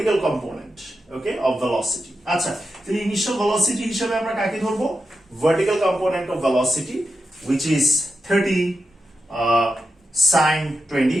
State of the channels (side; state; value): both; normal; correlation 0.88